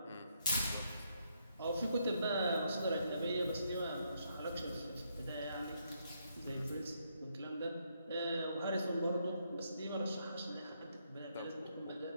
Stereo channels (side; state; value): both; inverted; correlation -0.76